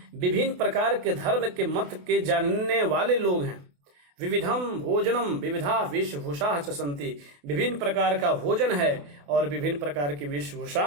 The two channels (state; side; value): late; left; 28 ms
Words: विभिन्न प्रकार के धर्म के मत के जानने वाले लोग हैं। विविधम भोजनम विविधा वेशभूषा च सन्ति, विभिन्न प्रकार का भोजन है और विभिन्न प्रकार की वेशभूषा